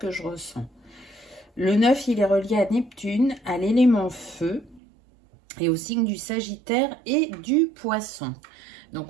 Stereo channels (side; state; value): left; drops out; at 4.8 s